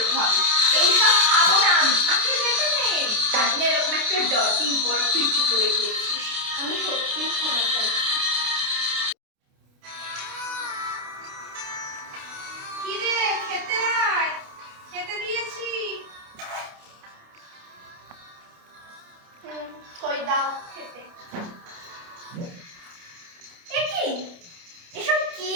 হবে। এইসব খাবো না আমি। আমাকে যেতে নেই। জানি না এরকম একটা ডার্টি ওয়ার্ক তুই কি করে করছিস। আমি সত্যিই ক্ষমা চাই। কি রে, খেতে আয়, খেতে দিয়েছি। কই দাও খেতে। এ কি, এসব কি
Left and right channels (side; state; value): left; late; 28 ms